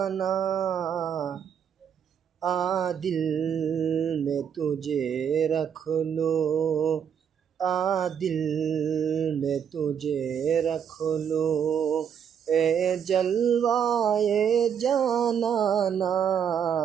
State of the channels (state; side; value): quieter; left; 8.0 dB